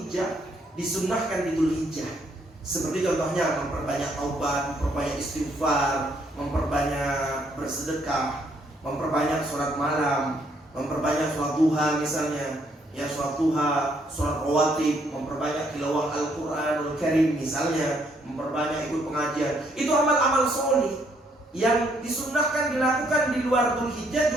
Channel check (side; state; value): both; normal; correlation 0.70